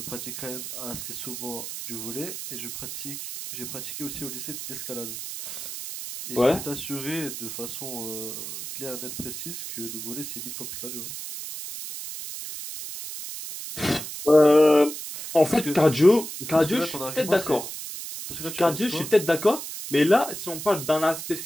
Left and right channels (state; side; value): noise; right; hiss, 8 dB below the sound